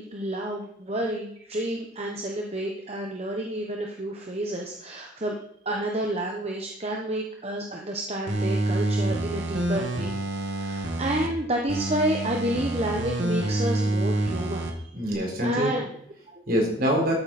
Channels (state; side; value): normal; both; correlation 0.57